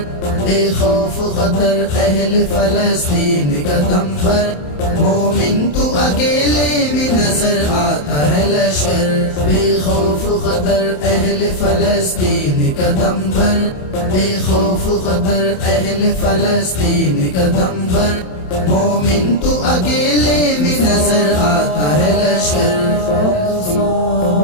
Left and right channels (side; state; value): right; late; 27 ms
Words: بے خوف خطر اہل فلسطین قدم بر مومن تو اکیلے میں نظر آتا ہے لشکر بے خوف خطر اہل فلسطین قدم بر بے خوف خطر اہل فلسطین قدم بر مومن تو اکیلے میں نظر آتا ہے لشکر